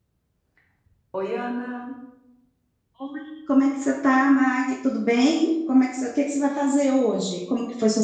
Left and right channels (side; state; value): both; identical; correlation 1.00